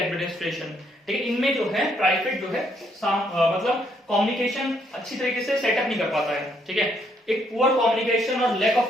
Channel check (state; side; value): normal; both; correlation 0.72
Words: ठीक है, इनमें जो है ट्राइफेड जो है मतलब कम्युनिकेशन अच्छी तरीके से सेटअप नहीं कर पाता है, ठीक है। एक पुअर कम्युनिकेशन और लैक